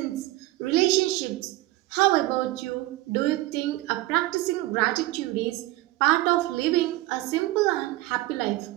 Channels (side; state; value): left; quieter; 18.1 dB